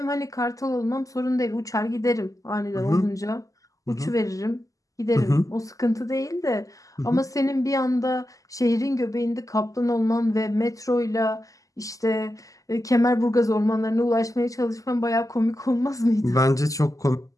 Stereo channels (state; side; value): late; right; 0.16 ms